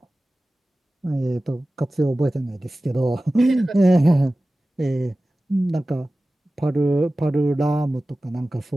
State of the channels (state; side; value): normal; both; correlation 0.96